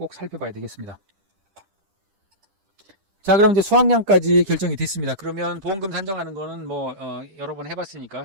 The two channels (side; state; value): left; late; 10 ms